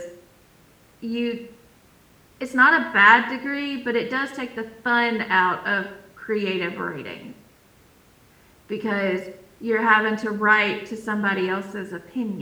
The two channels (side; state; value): both; identical; correlation 1.00